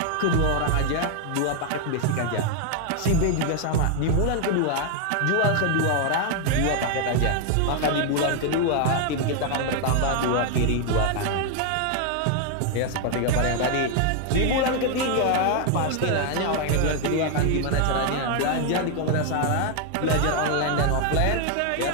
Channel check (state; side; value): different; both; correlation 0.00